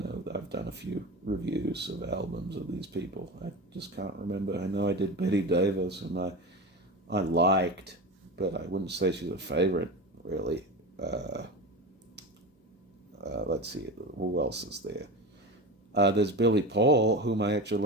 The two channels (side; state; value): both; normal; correlation 0.27